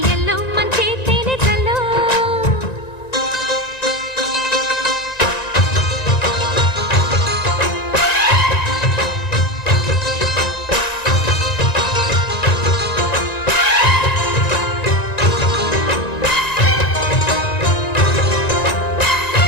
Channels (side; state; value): right; late; 1.9 ms